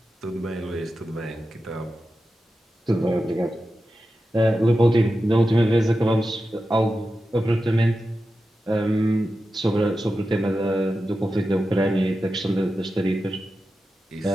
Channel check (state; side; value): normal; both; correlation 0.91